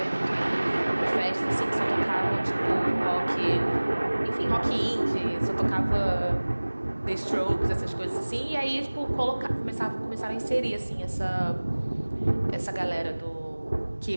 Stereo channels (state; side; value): inverted; both; correlation -1.00